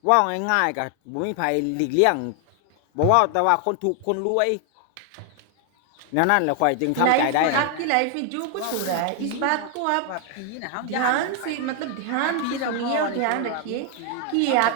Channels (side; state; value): both; different; correlation 0.00